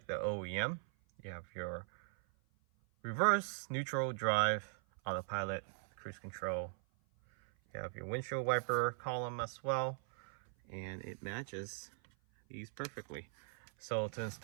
the OEM. You have your reverse, neutral, drive, autopilot, cruise control. You have your windshield wiper column as well, and it matches these perfectly. So to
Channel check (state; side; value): silent; left; 51 dB below the other